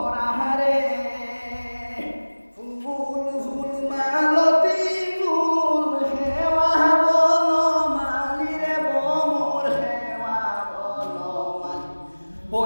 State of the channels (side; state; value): both; inverted; correlation -1.00